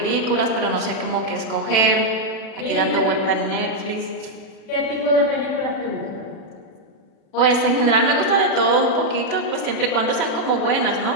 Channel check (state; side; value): late; right; 36 ms